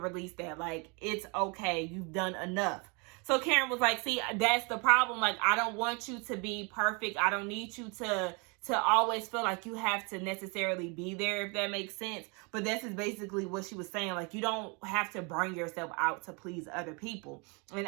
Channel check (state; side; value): quieter; left; 31.8 dB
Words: that. Like, it's okay. You've done enough. So Karen was like, see, that's the problem. Like, I don't want you to be perfect. I don't need you to always feel like you have to necessarily be there, if that makes sense. But this is basically what she was saying. Like, you don't have to burn yourself out to please other people. And